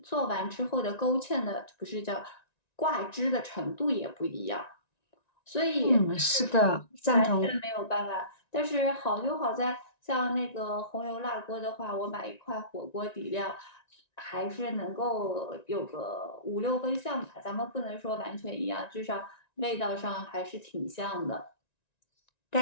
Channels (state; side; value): late; right; 1.9 ms